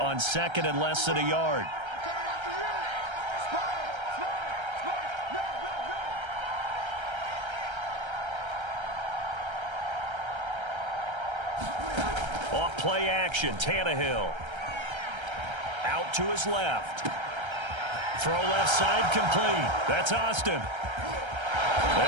second and less than a yard. Off play action, Tannehill. Out to his left. Throw left side complete. That's Austin.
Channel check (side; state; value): left; late; 1.3 ms